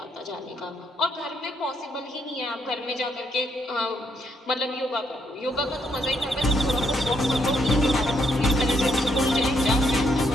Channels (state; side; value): normal; both; correlation 0.75